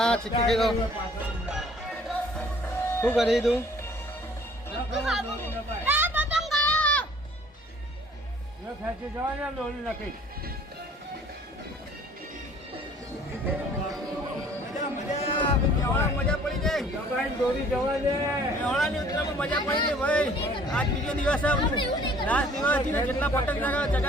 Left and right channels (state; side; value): normal; both; correlation 0.54